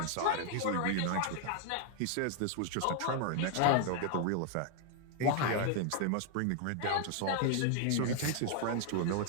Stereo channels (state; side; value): different; both; correlation 0.00